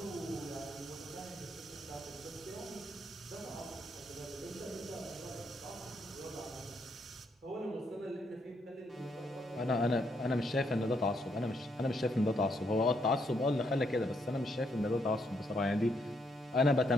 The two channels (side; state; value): both; normal; correlation 0.75